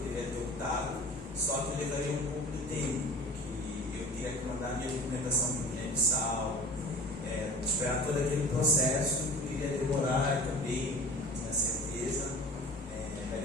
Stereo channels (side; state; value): both; normal; correlation 0.41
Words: ter optado, só que eu levaria um pouco de tempo, porque eu teria que mandar minha documentação para o Guiné-Bissau, esperar todo aquele processo, poderia demorar também, na certeza, da